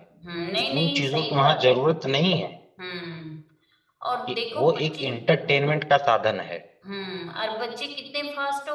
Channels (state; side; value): identical; both; correlation 1.00